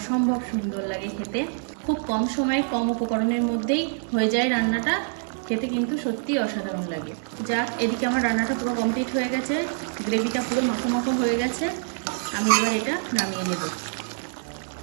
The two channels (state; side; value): silent; left; digital silence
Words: সুন্দর লাগে খেতে। খুব কম সময়ে কম উপকরণের মধ্যেই হয়ে যায় রান্নাটা, খেতে কিন্তু সত্যিই অসাধারণ লাগে। যাক, এদিকে আমার রান্নাটা পুরো কমপ্লিট হয়ে গেছে, গ্রেভিটা পুরো মাখো মাখো হয়ে গেছে। আমি এবার এটা নামিয়ে নেব।